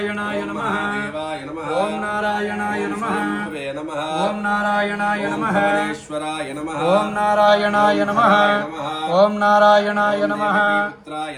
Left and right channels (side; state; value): both; identical; correlation 1.00